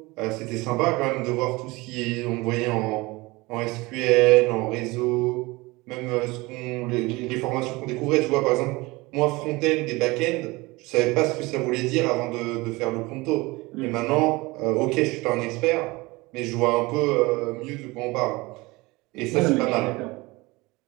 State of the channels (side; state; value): left; quieter; 22.7 dB